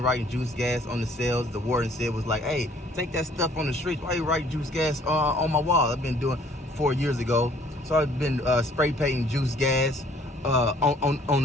writing juice gas on the cells. The warden said was like, hey, take that stuff on the streets. Why you write juice gas on my wall? I've been doing 4 years ago. So I've been spray painting juice gas on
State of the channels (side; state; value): both; normal; correlation 0.59